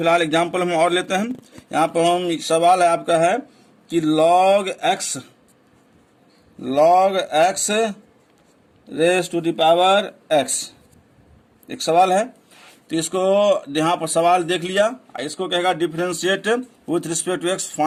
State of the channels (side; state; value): both; identical; correlation 1.00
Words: एग्जाम्पल हम और लेते हैं। यहाँ पर हम सवाल है आपका है कि log x raise to the power x, एक सवाल है। तो इसको यहाँ पर सवाल देख लिया, इसको कहेगा differentiate with respect to x,